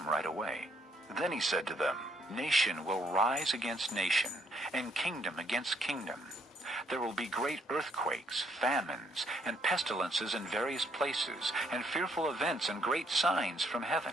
right away. Then he said to them, Nation will rise against nation, and kingdom against kingdom. There will be great earthquakes, famines, and pestilences in various places, and fearful events and great signs from heaven.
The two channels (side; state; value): both; normal; correlation 0.70